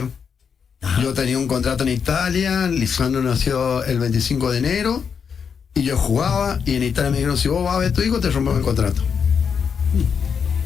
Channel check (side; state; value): right; quieter; 6.6 dB